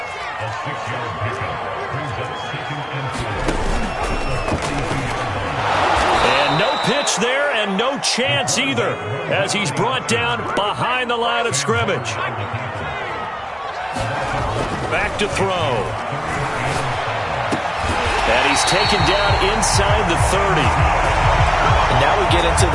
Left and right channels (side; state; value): both; identical; correlation 1.00